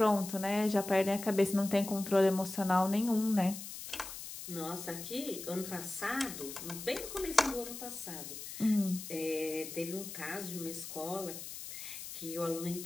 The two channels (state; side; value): noise; left; hiss, 10 dB below the sound